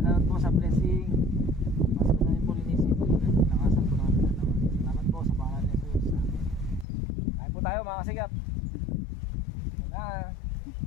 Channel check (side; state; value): right; drops out; at 6.9 s